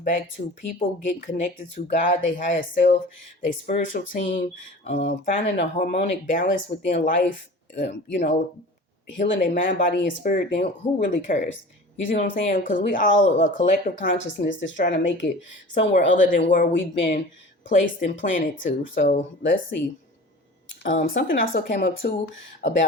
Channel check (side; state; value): both; normal; correlation 0.39